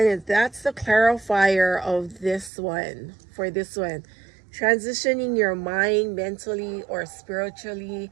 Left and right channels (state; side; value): drops out; left; at 2.5 s